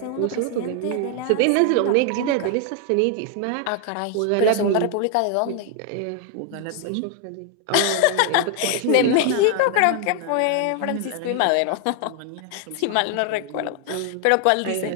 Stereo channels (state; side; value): different; both; correlation 0.00